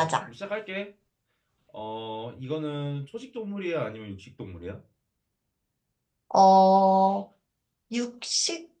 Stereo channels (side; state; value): both; identical; correlation 1.00